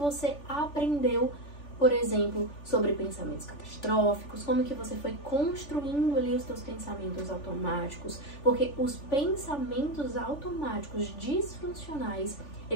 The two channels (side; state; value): right; late; 3.4 ms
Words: aprendeu, por exemplo, sobre pensamentos catastróficos, como que você foi construindo ali os seus pensamentos automáticos, porque os pensamentos automáticos disfuncionais,